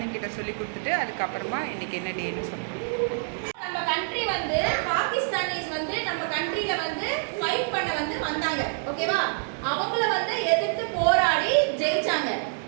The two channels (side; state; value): left; silent; digital silence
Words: சொல்லி கொடுத்துட்டு அதுக்கப்புறமா இன்றைக்கி என்ன டேன்னு சொல்லுவோம். நம்ம கண்ட்ரி வந்து பாகிஸ்தானிஸ் வந்து நம்ம கண்ட்ரியில வந்து ஃபைட் பண்ண வந்து வந்தாங்க, ஓகேவா? அவங்கள வந்து எதிர்த்து போராடி ஜெயிச்சாங்க.